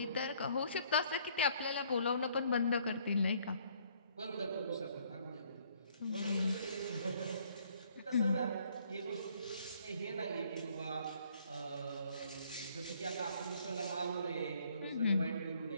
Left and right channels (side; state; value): both; inverted; correlation -0.63